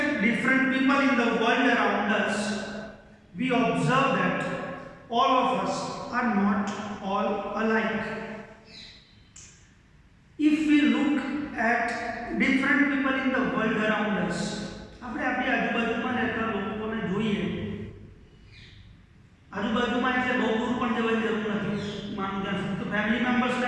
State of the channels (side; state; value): both; identical; correlation 1.00